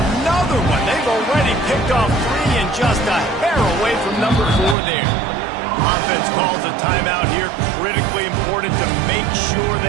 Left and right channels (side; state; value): left; drops out; at 4.8 s